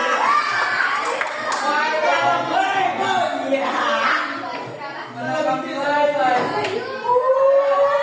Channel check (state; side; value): identical; both; correlation 1.00